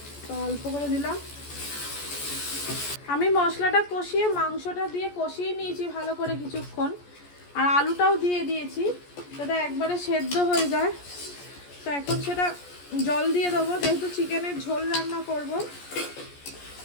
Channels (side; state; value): right; late; 14 ms